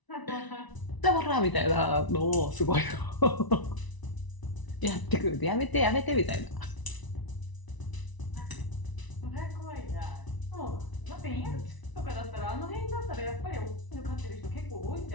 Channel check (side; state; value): right; late; 1.0 ms